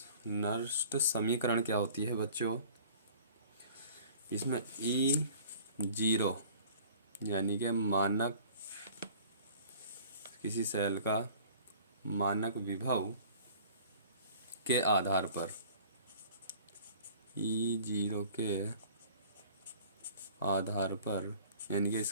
समीकरण क्या होती है बच्चों, इसमें E0 यानी कि मानक किसी सेल का मानक विभव के आधार पर, E0 के आधार पर, यानी कि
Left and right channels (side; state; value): both; inverted; correlation -0.48